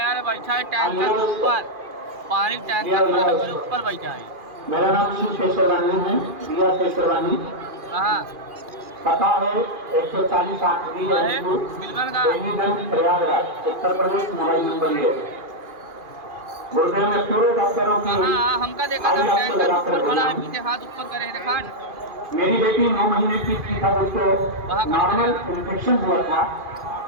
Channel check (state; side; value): late; left; 2.4 ms